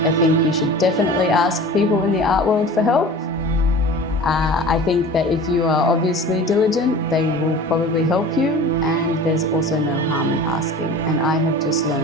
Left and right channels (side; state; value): both; normal; correlation 0.39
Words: you should definitely ask people in the art world for help. I think that if you are obviously diligent, they will probably help you, and there's also no harm in asking. And I have just